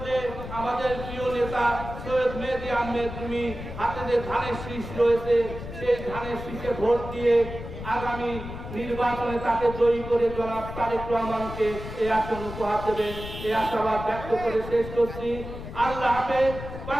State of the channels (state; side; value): noise; left; rumble, 10 dB below the sound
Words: আমাদের প্রিয় নেতা সৈয়দ মেহেদী আহমেদ তুমি হাতে যে ধানের শীষ রয়েছে সেই ধানের শীষে ভোট দিয়ে আগামী নির্বাচনে তাকে জয়ী করে জনাব তারেক রহমানকে এই আসন উপহার দেবেন, এই আশাবাদ ব্যক্ত করে শেষ করছি। আল্লাহ হাফেজ।